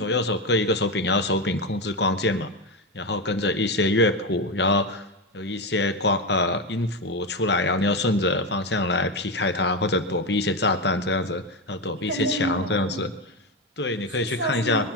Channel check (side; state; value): both; normal; correlation 0.13